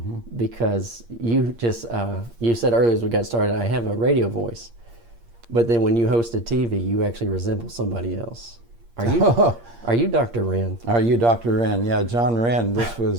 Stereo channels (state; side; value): late; left; 8.6 ms